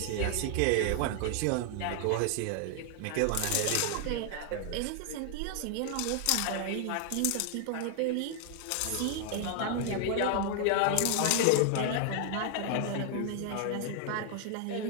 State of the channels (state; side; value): different; both; correlation 0.00